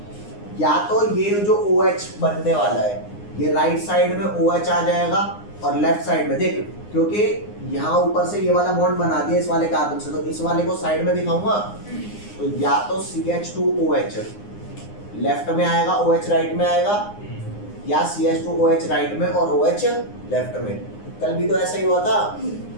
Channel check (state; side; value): late; right; 9.7 ms